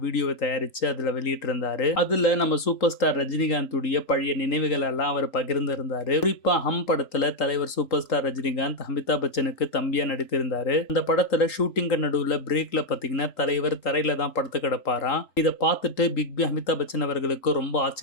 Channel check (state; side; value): late; right; 3.8 ms